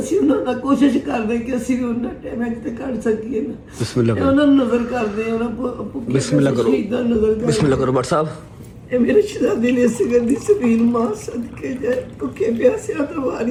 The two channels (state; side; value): identical; both; correlation 1.00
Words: ਉਹਨਾਂ ਦਾ ਕੋਸ਼ਿਸ਼ ਕਰਦੇ ਕਿ ਅਸੀਂ ਵੀ ਉਹਨਾਂ ਟਾਈਮ ਤੇ ਕੱਢ ਸਕੀਏ ਨਾ। ਬਿਸਮਿਲ੍ਲਾ ਕਰੋ, ਉਹਨਾਂ ਨੂੰ ਨਜ਼ਰ ਕਰਦੇ, ਉਹਨਾਂ ਬਿਸਮਿਲ੍ਲਾ ਕਰੋ, ਸ਼ਹੀਦਾਂ ਨਜ਼ਰ ਕਰਦੇ। ਬਿਸਮਿਲ੍ਲਾ ਕਰੋ ਬਟ ਸਾਹਿਬ, ਇਹ ਮੇਰੇ ਸ਼ਹਿਜ਼ਾਦੇ ਨੇ ਸਿਗਰ ਦੀ ਸਬੀਲ ਮਾਂ ਸਦਕੇ ਜਾਏ ਭੁੱਖੇ ਪਿਆਸਿਆਂ ਤੋਂ